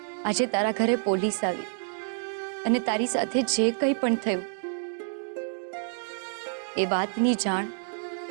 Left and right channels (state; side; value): silent; left; digital silence